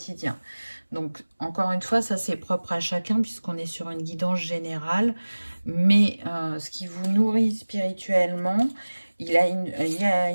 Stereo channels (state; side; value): inverted; both; correlation -1.00